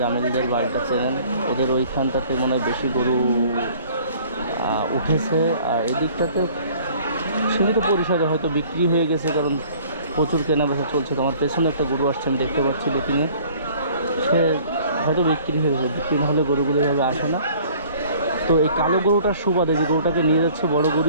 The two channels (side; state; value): both; inverted; correlation -0.53